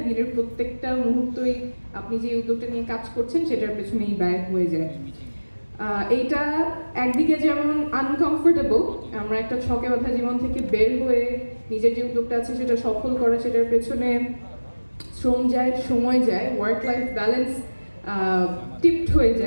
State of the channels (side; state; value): both; inverted; correlation -1.00